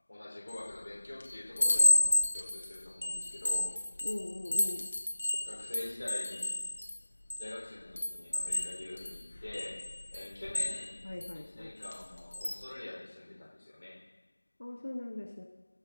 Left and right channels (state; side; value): inverted; both; correlation -1.00